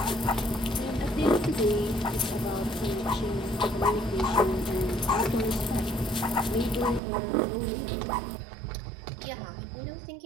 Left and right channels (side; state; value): left; drops out; at 7.0 s